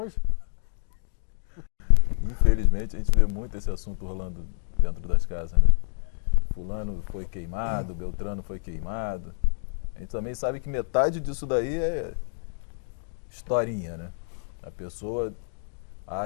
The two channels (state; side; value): silent; right; digital silence